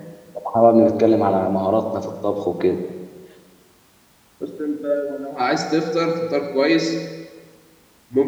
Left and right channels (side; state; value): both; identical; correlation 1.00